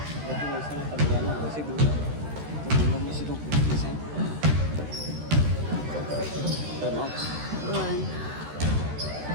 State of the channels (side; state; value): left; late; 13 ms